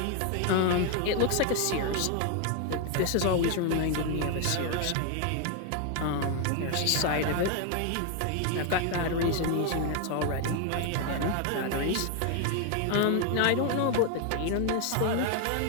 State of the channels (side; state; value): both; different; correlation 0.00